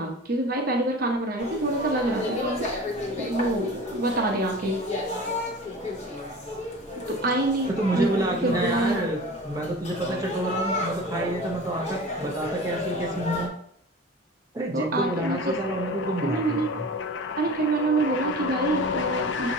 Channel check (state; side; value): normal; both; correlation 0.37